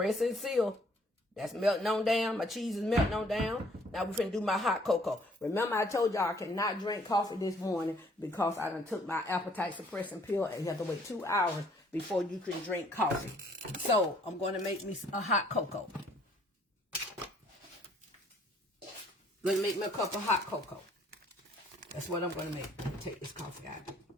and seal. That's melting on down. My cheese is melting on down. Now we're finna do my hot cocoa. Remember I told y'all I cannot drink coffee this morning because I done took my appetite suppressing pill and you have to wait 2 hours before you can drink coffee. So I'm going to make me a hot cocoa. Going to make me a cup of hot cocoa. That's what I'm going to make. Take this coffee out.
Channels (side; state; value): both; normal; correlation 0.62